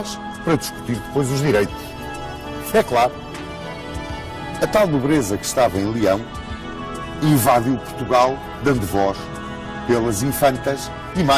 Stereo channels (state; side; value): identical; both; correlation 1.00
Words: para discutir depois os direitos. É claro, a tal nobreza que estava em Leão invadiu Portugal dando voz pelas infantas e